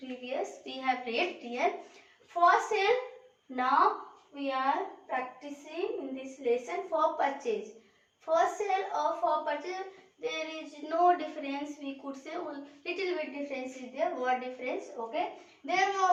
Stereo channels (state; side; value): identical; both; correlation 1.00